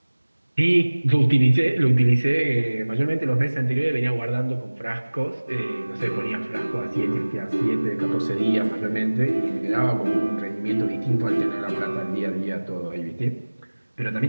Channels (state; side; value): inverted; both; correlation -1.00